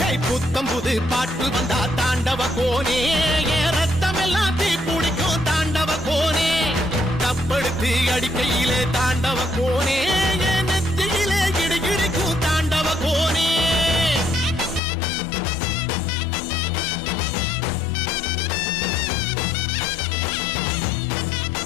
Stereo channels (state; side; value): drops out; right; at 14.8 s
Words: புத்தம் புது பாட்டு வந்தா தாண்டவ கோனே, ரத்தம் எல்லாம் தீ பிடிக்கும் தாண்டவ கோனே. தப்படுத்து அடிக்கையிலே தாண்டவ கோனே, நெத்தியிலே இடி இடிக்கும் தாண்டவ கோனே.